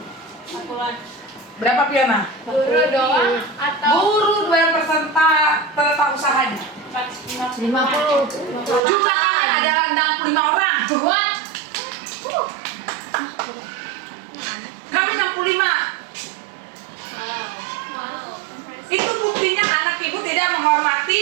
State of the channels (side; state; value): left; drops out; at 8.8 s